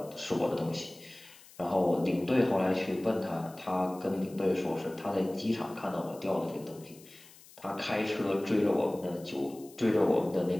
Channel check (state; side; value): noise; left; hiss, 22 dB below the sound